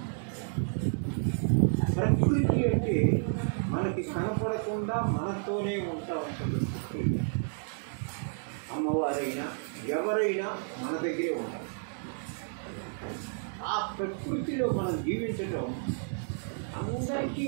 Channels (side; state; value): left; silent; digital silence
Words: ప్రకృతి అంటే మనకి కనపడకుండా మనతోనే ఉంటా ఉంటుంది. ప్రకృతి అమ్మవారైనా ఎవరైనా మన దగ్గరే ఉంటారు. ఆ ప్రకృతిలో మనం జీవించటం అందరికీ